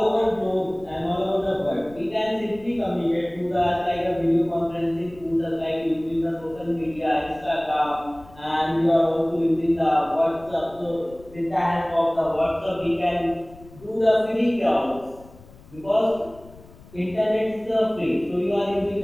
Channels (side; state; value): left; noise; rumble, 22 dB below the sound